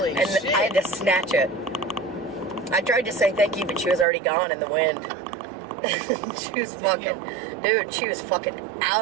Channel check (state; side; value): drops out; left; at 4.0 s